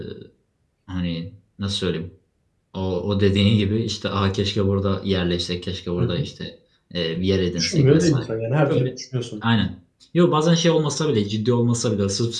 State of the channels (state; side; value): identical; both; correlation 1.00